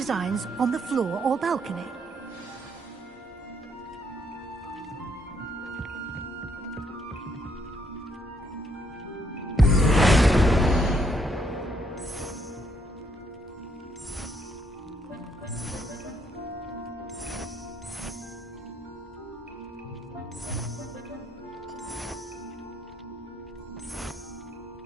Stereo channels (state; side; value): normal; both; correlation 0.72